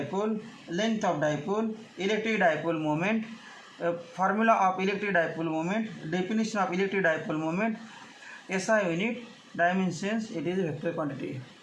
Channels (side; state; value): both; identical; correlation 1.00